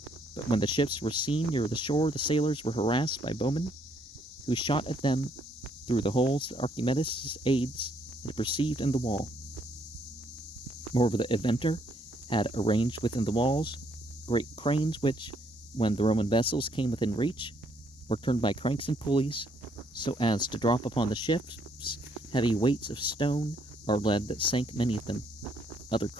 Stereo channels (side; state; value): both; normal; correlation 0.69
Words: But when the ships were seen near the shore, the sailors were harassed by bowmen, who shot at them through the holes that Archimedes' aides had perceived in the wall. Moreover, the inventor had arranged within the walls great cranes which, when the Roman vessels came within reach, were turned by cranks and pulleys so as to drop upon the ships heavy weights of stone or lead that sank many of them. Other